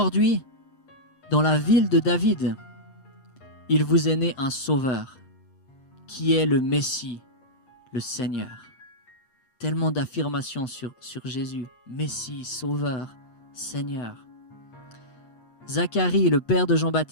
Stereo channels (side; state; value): right; late; 7.9 ms